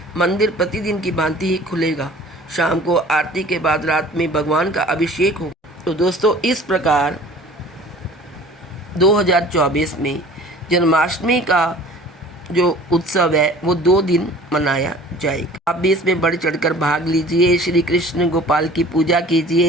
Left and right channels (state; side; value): normal; both; correlation 0.46